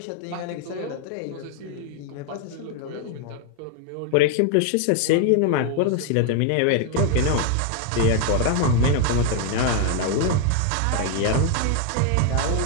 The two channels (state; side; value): different; both; correlation 0.00